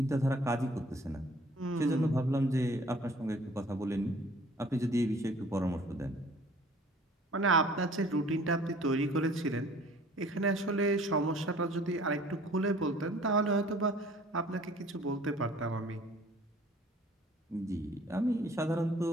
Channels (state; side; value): normal; both; correlation 0.52